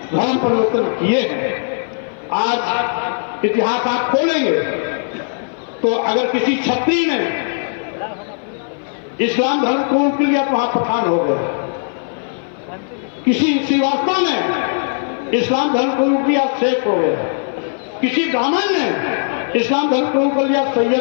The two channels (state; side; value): silent; right; 58 dB below the other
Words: धर्म परिवर्तन किए हैं। आज इतिहास आप खोलेंगे तो अगर किसी क्षत्रिय ने इस्लाम धर्म कबूल कर लिया तो वहां पठान हो गए। किसी श्रीवास्तव ने इस्लाम धर्म कबूल किया, शेख हो गया। किसी ब्राह्मण ने इस्लाम धर्म कबूल कर लिया,